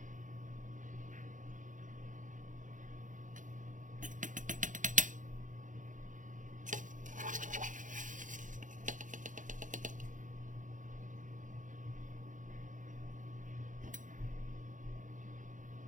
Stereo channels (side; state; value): left; late; 0.37 ms